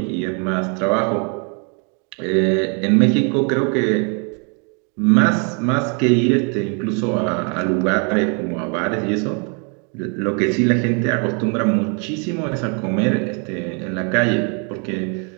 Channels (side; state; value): left; quieter; 37.3 dB